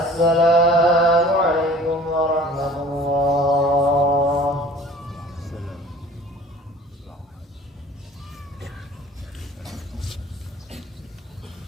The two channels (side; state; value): both; normal; correlation 0.47